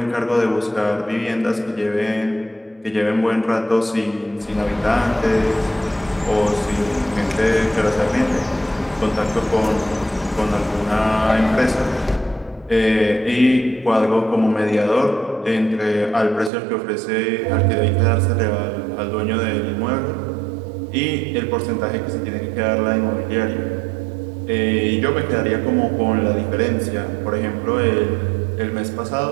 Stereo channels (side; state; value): left; drops out; at 16.5 s